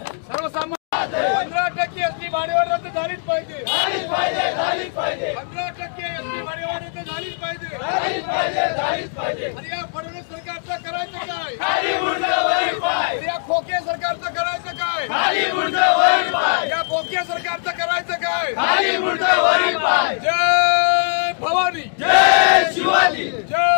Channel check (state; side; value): silent; right; digital silence